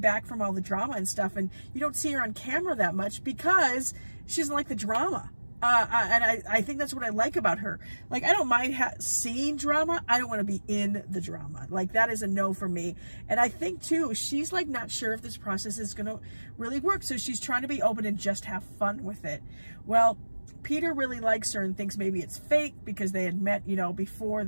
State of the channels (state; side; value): inverted; both; correlation -1.00